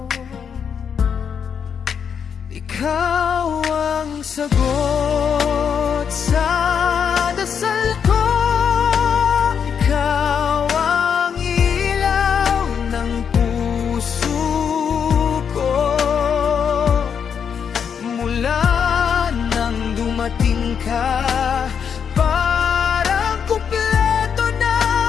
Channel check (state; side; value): quieter; right; 7.2 dB